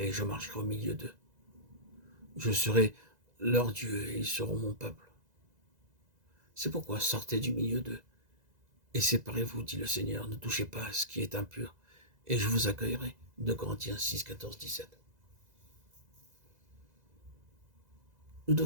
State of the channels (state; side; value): late; left; 2.0 ms